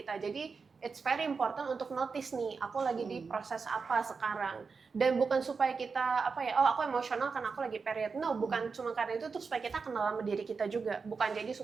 Jadi it's very important untuk notice nih, aku lagi di proses apa sekarang. Dan bukan supaya kita aku emosional karena aku lagi period. No, bukan cuma karena itu, tuh supaya kita kenal sama diri kita juga. Bukan jadi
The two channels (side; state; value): left; quieter; 5.0 dB